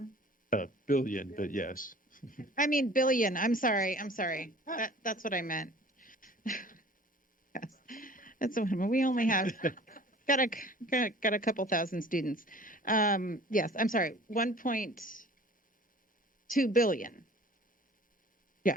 Billion, but yes. I mean, billion. I'm sorry. That's what I meant. Yes. That's what we only have got a couple thousand students. Yes, I'm sorry. 1.2 billion. Yeah,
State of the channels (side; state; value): both; normal; correlation 0.47